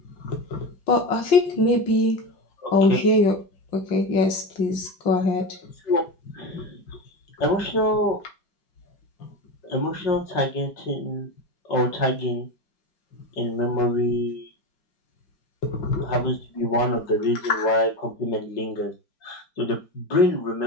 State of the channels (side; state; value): right; late; 5.6 ms